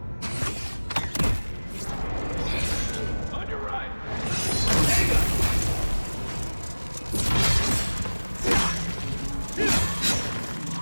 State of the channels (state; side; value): inverted; both; correlation -1.00